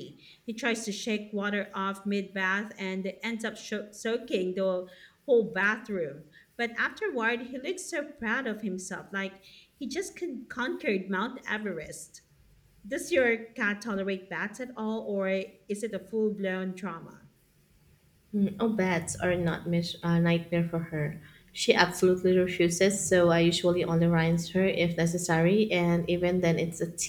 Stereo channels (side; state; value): both; identical; correlation 1.00